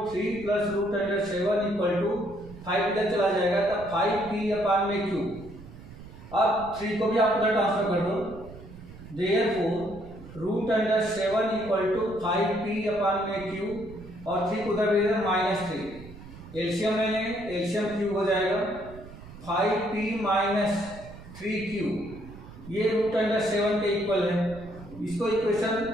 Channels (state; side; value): noise; right; rumble, 16 dB below the sound